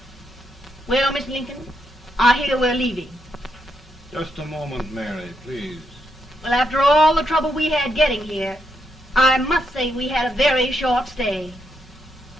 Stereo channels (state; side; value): normal; both; correlation 0.80